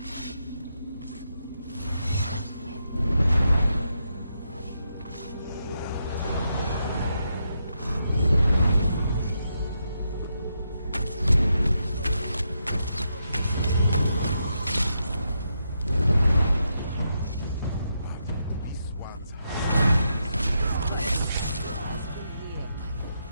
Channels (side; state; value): both; inverted; correlation -0.83